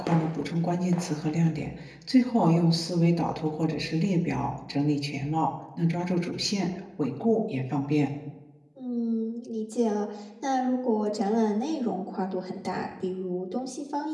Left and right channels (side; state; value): both; identical; correlation 1.00